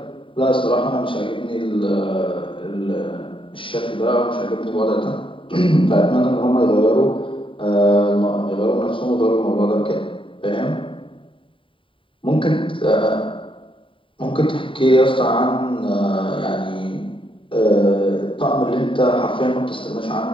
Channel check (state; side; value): late; right; 0.25 ms